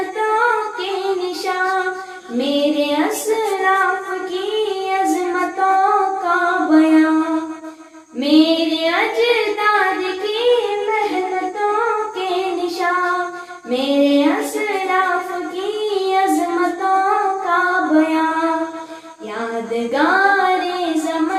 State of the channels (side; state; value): both; identical; correlation 1.00